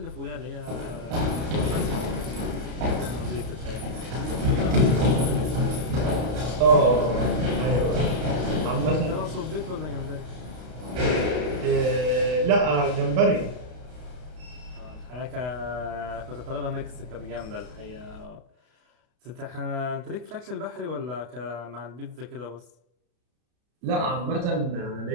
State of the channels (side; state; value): left; late; 32 ms